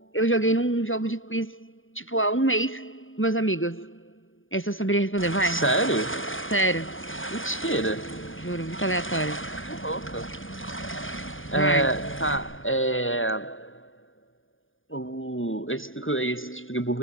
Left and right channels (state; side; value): late; right; 0.58 ms